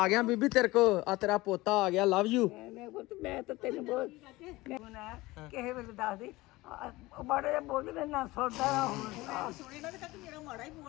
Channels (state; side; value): quieter; right; 20.1 dB